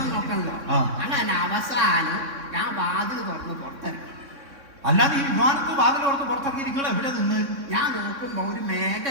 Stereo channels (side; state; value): left; late; 3.6 ms